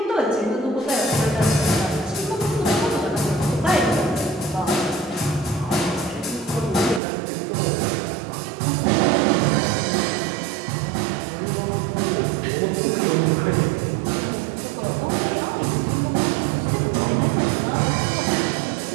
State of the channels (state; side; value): drops out; left; at 7.0 s